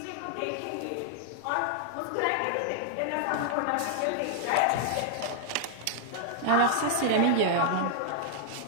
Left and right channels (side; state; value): both; different; correlation 0.00